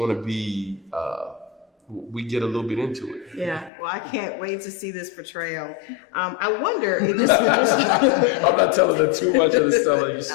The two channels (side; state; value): right; drops out; at 3.7 s